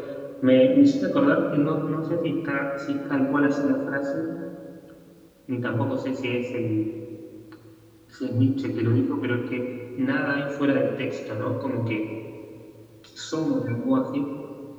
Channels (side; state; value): both; identical; correlation 1.00